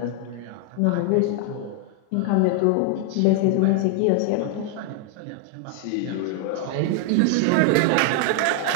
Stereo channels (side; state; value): both; different; correlation 0.00